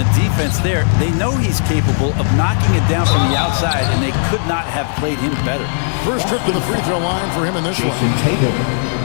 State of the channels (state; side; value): silent; right; digital silence